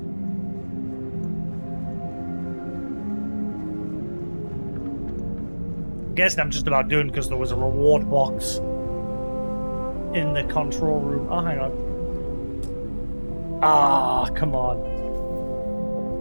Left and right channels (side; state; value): both; inverted; correlation -1.00